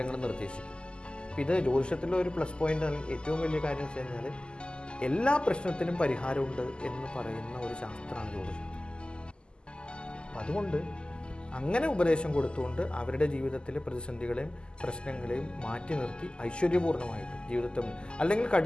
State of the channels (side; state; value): right; late; 0.049 ms